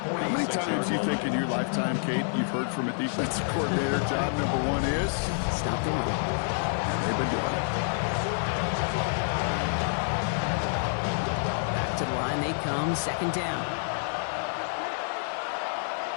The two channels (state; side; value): silent; right; digital silence